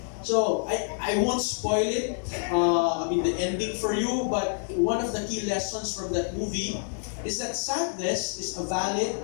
So, I won't spoil it, the ending for you, but one of the key lessons from that movie is that sadness is a valid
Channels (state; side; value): silent; right; digital silence